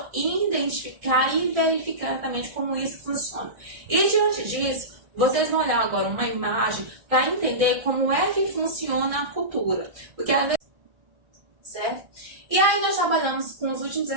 identificar e verificar exatamente como isso funciona. E, diante disso, vocês vão olhar agora uma imagem para entender como é que funciona a cultura. Porque às vezes... Certo? E aí nós trabalhamos com os últimos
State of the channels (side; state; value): left; late; 1.6 ms